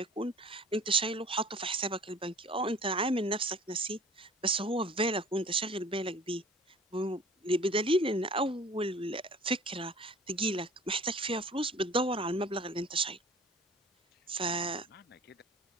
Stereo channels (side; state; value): both; normal; correlation 0.46